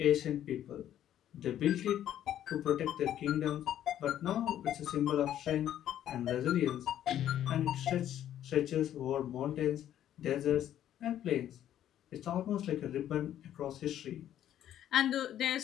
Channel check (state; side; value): quieter; right; 11.3 dB